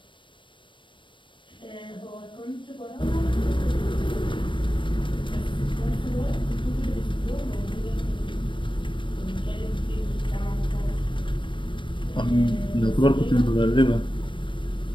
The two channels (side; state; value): right; late; 0.24 ms